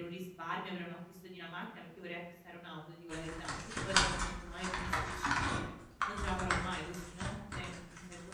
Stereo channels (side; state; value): both; identical; correlation 1.00